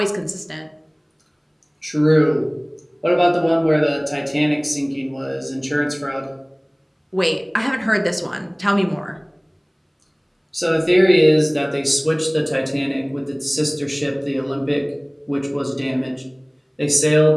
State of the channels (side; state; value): both; identical; correlation 1.00